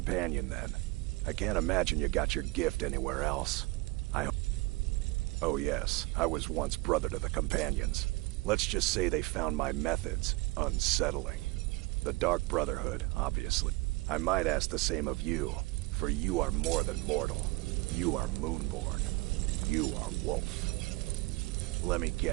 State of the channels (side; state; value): left; quieter; 23.4 dB